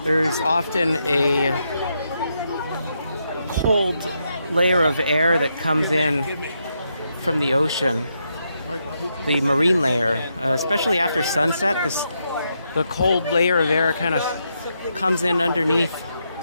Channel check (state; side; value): inverted; both; correlation -0.81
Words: there's often a cold layer of air that comes in from the ocean, the marine layer, especially after sunset. The cold layer of air kind of comes in underneath